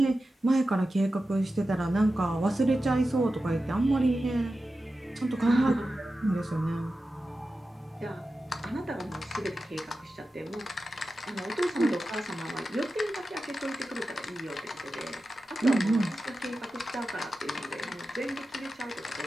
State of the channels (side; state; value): both; normal; correlation 0.93